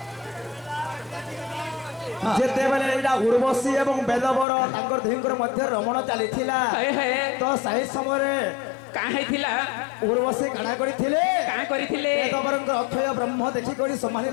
ଉର୍ବଶୀ ଏବଂ ବେଦବର ତାଙ୍କର ଦୁହିଁଙ୍କର ମଧ୍ୟରେ ରମଣ ଚାଲିଥିଲା ହଏ ହଏ ତ ସେହି ସମୟରେ କାଁ ହେଇଥିଲା ଉର୍ବଶୀ କାଣା କରିଥିଲେ କାଁ କରିଥିଲେ ବେଦବରଙ୍କ ଅକ୍ଷୟ ବ୍ରହ୍ମ ଦେଖିକରି ସମ୍ଭାଳି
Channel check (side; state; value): right; drops out; at 4.5 s